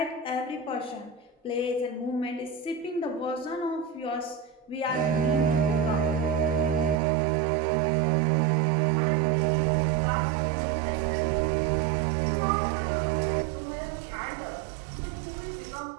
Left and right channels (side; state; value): left; drops out; at 7.0 s